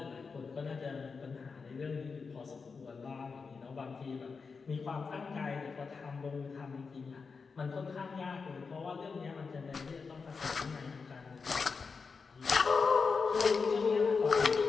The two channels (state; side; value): quieter; right; 5.0 dB